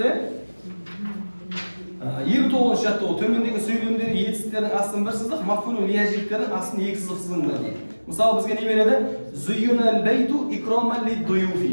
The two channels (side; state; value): both; inverted; correlation -1.00